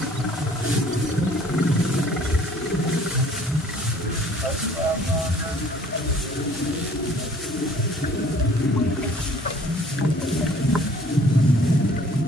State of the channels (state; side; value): normal; both; correlation 0.54